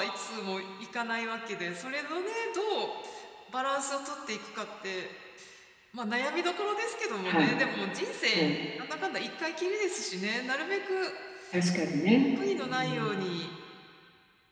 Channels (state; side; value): identical; both; correlation 1.00